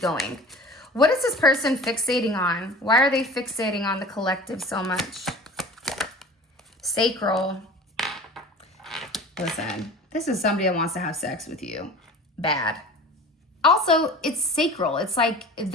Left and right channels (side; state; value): both; normal; correlation 0.40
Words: What is this person fixating on? Why are they fixating on the collective so much? Sacral. Listen, This is somebody that wants to have sex with you. Bad. Also, it's sacral. It's like